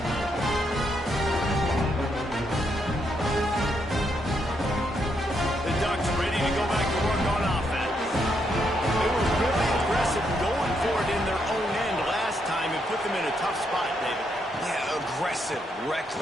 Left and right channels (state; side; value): normal; both; correlation 0.78